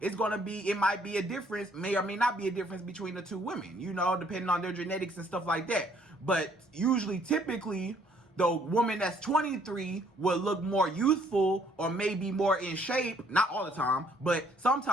might be a difference, may or may not be a difference between the two women, you know, depending on their genetics and stuff like that. But usually, typically, the woman that's 23 will look more youthful or maybe more in shape. Not all the time, but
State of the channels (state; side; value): normal; both; correlation 0.64